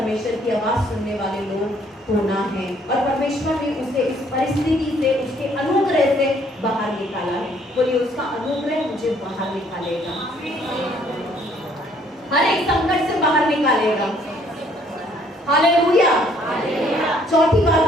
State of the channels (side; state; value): both; normal; correlation 0.63